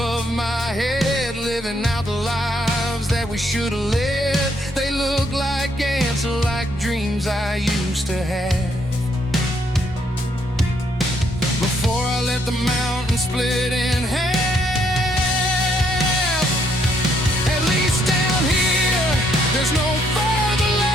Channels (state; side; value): normal; both; correlation 0.71